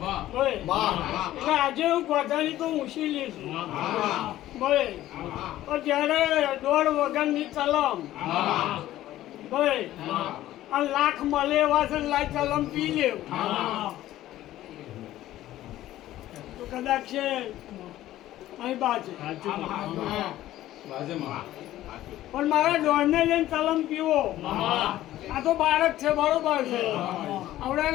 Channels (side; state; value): right; quieter; 14.3 dB